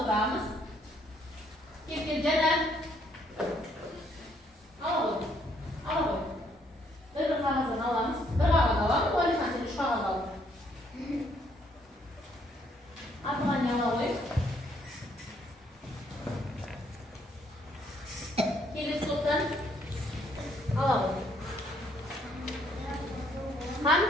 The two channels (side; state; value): both; normal; correlation 0.69